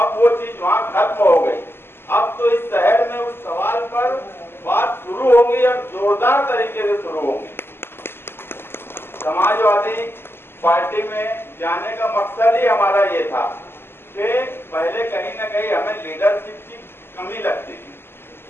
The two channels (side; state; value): right; late; 0.11 ms